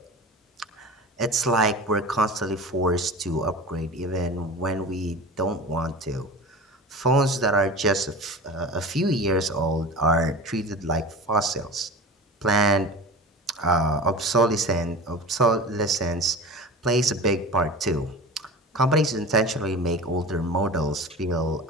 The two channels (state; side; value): normal; both; correlation 0.33